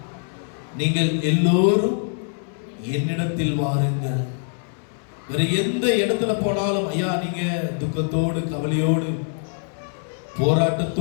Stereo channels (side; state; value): right; silent; 60 dB below the other